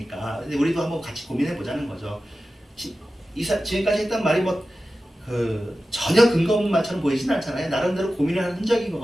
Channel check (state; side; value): normal; both; correlation 0.94